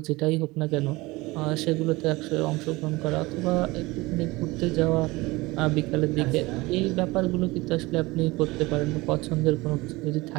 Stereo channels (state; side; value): quieter; left; 21.7 dB